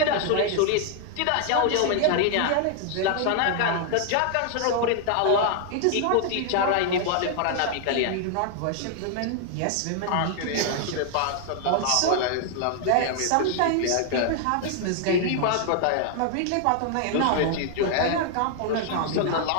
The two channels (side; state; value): both; different; correlation 0.00